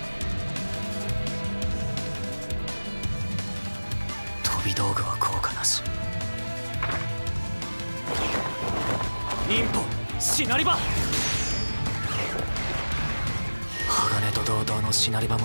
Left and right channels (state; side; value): inverted; both; correlation -1.00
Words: 飛び道具は効果なし。忍法シナリバ。鋼と同等のシナリバ